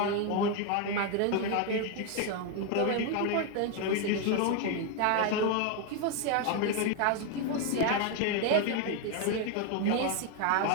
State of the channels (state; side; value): different; both; correlation 0.01